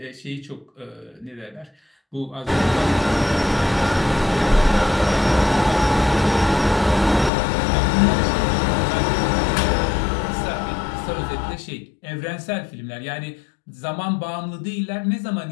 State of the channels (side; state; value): right; drops out; at 7.3 s